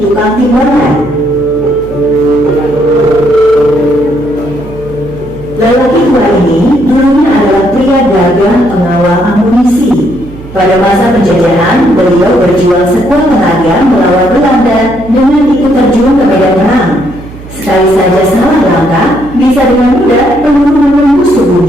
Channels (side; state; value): right; noise; hum, 16 dB below the sound